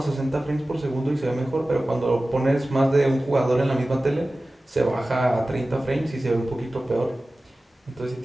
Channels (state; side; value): normal; both; correlation 0.96